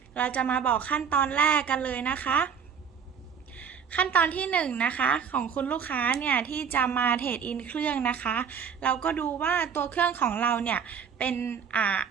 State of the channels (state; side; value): quieter; left; 7.0 dB